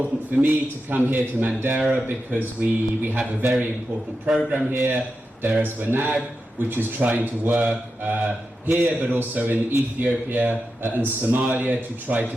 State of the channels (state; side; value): normal; both; correlation 0.89